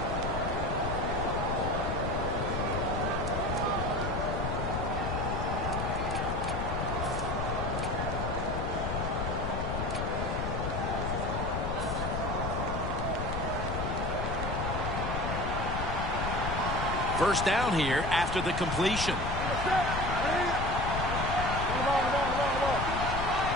First down here after the completion.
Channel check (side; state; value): left; noise; rumble, 2 dB below the sound